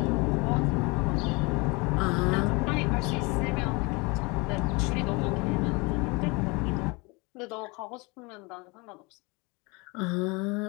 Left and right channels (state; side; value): quieter; right; 27.3 dB